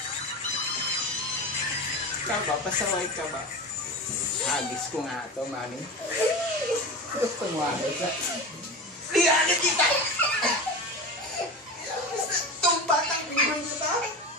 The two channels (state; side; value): normal; both; correlation 0.26